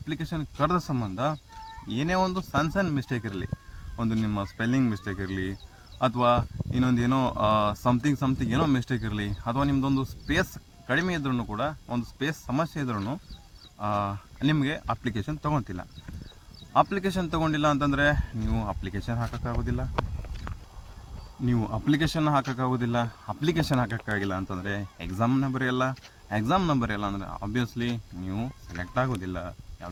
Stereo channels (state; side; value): identical; both; correlation 1.00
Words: ಕರೆದ ಸಂಬಂಧ ಏನೇ ಒಂದು ಸಣ್ಣ ಮಿಸ್ಟೇಕ್ ಇರಲಿ, ಒಂದು ನಿಮ್ಮ ಸ್ಪೆಲ್ಲಿಂಗ್ ಮಿಸ್ಟೇಕ್ ಇರಲಿ, ಅಥವಾ ಇನ್ನೊಂದು ಏನೋ ಸಮಥಿಂಗ್ ಏನೋ ಮಿಸ್ಟೇಕ್ ಇರಲಿ, ಅಥವಾ ನಿಮ್ಮದೊಂದು ಸ್ಪೇಸ್ ಕಡಿಮೆ ಇದ್ರೂ ಕೂಡ, ಒಂದು ಸ್ಪೇಸ್ ಸಮಸ್ಯೆ ಇದ್ರೂ ನಿಮಗೆ ಅಪ್ಲಿಕೇಶನ್ ತೊಗೊತಿಲ್ಲ. ಅಪ್ಲಿಕೇಶನ್ ತೊಗೊಂಡಿಲ್ಲ ಅಂತಂದರೆ ನೀವು ಅಪ್ಲಿಕೇಶನ್ ಹಾಕೋಕ್ಕಾಗೋದಿಲ್ಲ. ಅಪ್ಲಿಕೇಶನ್ ಹಾಕೋಕ್ಕಾಗಿಲ್ಲ ಅಂತಂದರೆ ಎಕ್ಸಾಮ್ ನಂಬರ್ ಇಲ್ಲ ಅಂದರೆ ಆಬ್ವಿಯಸ್ಲಿ ನೀವು ಸೆಲೆಕ್ಟ್ ಆಗೋದಿಲ್ಲ,